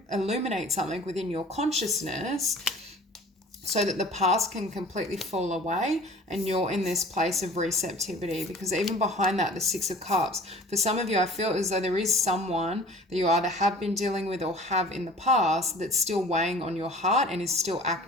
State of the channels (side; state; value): both; normal; correlation 0.45